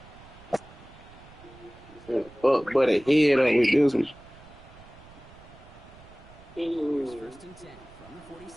Fuck, but a head up with this one. First and 10 from the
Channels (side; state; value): right; noise; rumble, 22 dB below the sound